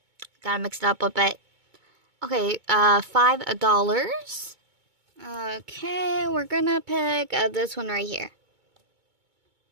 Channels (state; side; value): late; left; 2.2 ms